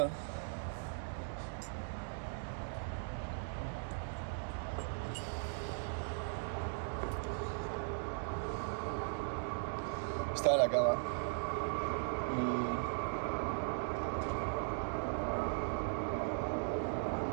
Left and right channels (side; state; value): left; silent; digital silence